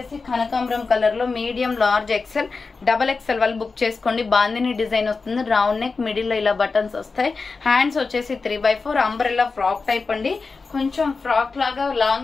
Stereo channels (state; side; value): quieter; right; 4.3 dB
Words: కనకాంబరం కలర్ లో మీడియం లార్జ్ XL XXL వాళ్ళు బుక్ చేసుకోండి. బాందిని డిజైన్ వస్తుంది. రౌండ్ నెక్ మిడిల్ లో ఇలా బటన్స్ వస్తాయి. హ్యాండ్స్ వచ్చేసి 3/4 అంబ్రెల్లా ఫ్రాక్ టైప్ అండి. కొంచెం ఫ్రాక్ లాగా